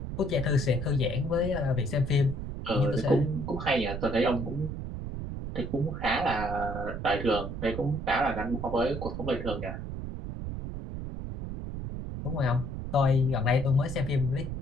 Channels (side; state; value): right; noise; rumble, 6 dB below the sound